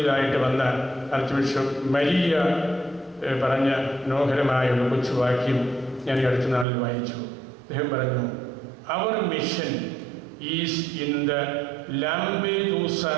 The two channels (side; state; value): left; drops out; at 6.7 s